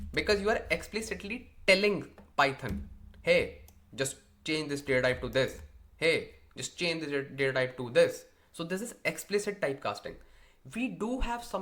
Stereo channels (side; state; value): both; identical; correlation 1.00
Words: because you are explicitly telling Python, hey, just change this data type to this. Hey, just change this data type to this. So this is explicit typecasting. We do have